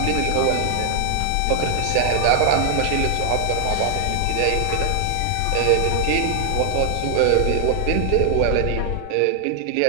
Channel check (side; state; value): both; different; correlation 0.00